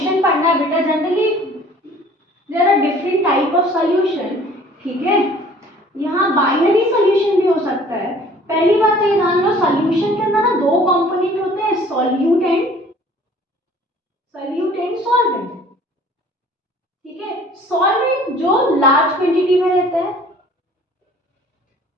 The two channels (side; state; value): both; normal; correlation 0.52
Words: पढ़ना है बेटा, generally there are different type of solution. ठीक है, यहाँ बाइनरी सॉल्यूशन भी हो सकता है। पहली बात ये जान लो, सॉल्यूशन के अंदर ना दो कंपोनेंट होते हैं, सॉल्यूट एंड सॉल्वेंट। ठीक है, सॉल्वेंट जो लार्ज क्वांटिटी में रहता है,